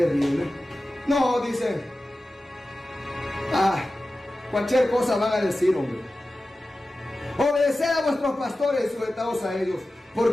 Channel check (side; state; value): both; normal; correlation 0.95